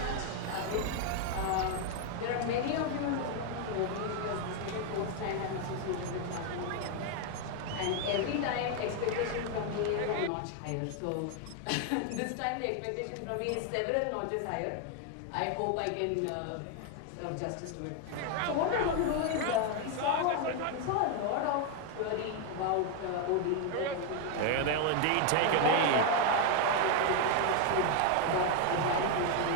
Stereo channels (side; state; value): both; different; correlation 0.01